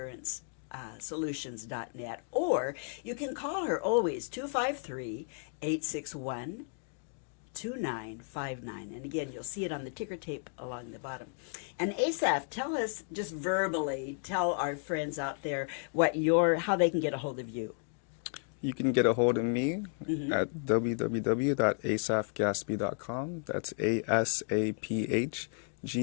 or you can call her always 253-861-2959. And again, you'll see it on the ticker tape along the bottom. And Asaph, tell us, just verbally, tell our friends out there how they can get a hold of you. You can get a hold of me at www.asaphgaspi.com. That's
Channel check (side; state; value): right; silent; 56 dB below the other